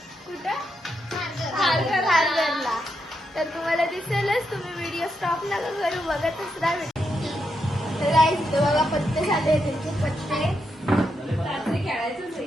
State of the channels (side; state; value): both; normal; correlation 0.83